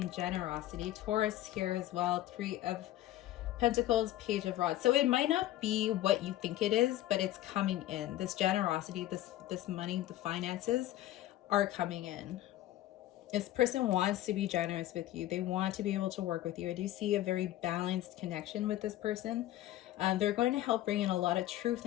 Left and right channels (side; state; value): right; quieter; 14.5 dB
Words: generosity. Taurus here as well. Three of Pentacles, Page of Rods. So it might not be what you think it is, but it's coming in. This generosity, this money, the finances are coming in. This person wants to be generous with you. They want to be able to work with you. I do see a very balanced connection with this person. They're going to help bring in a lot of truth